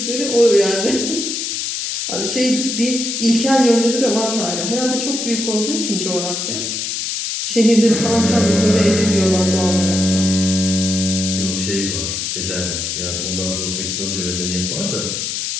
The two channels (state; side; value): noise; left; hiss, 3 dB below the sound